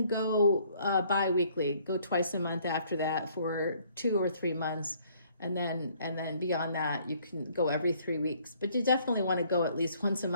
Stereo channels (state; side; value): inverted; both; correlation -0.62